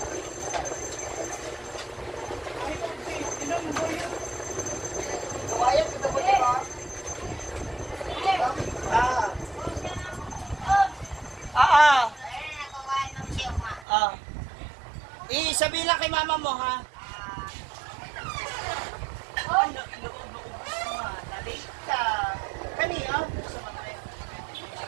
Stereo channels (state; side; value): drops out; left; at 13.9 s